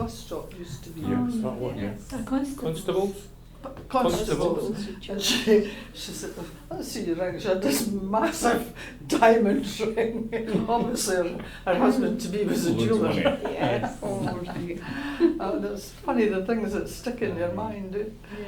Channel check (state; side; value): identical; both; correlation 1.00